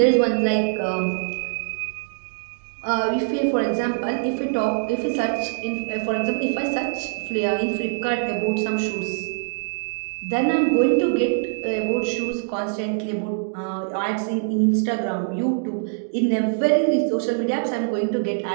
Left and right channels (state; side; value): silent; left; digital silence